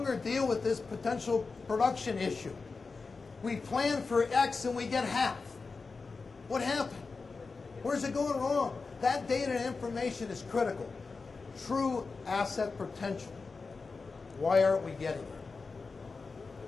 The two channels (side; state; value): right; quieter; 4.3 dB